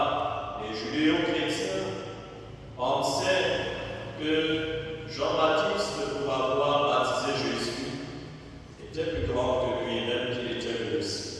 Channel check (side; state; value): both; identical; correlation 1.00